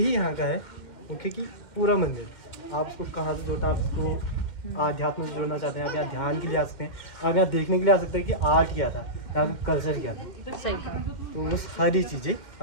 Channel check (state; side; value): late; right; 2.1 ms